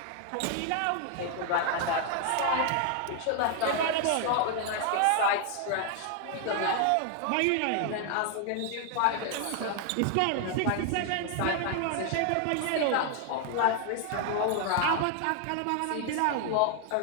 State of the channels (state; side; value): different; both; correlation 0.00